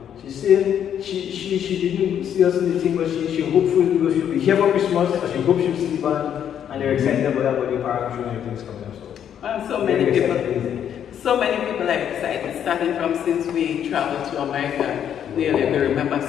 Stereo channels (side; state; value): right; quieter; 9.3 dB